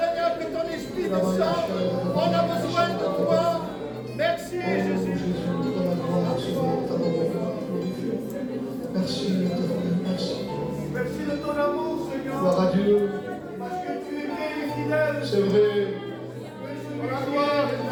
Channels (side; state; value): both; identical; correlation 1.00